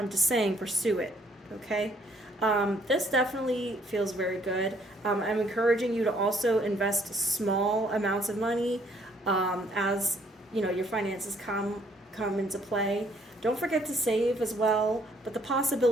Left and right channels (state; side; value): normal; both; correlation 0.64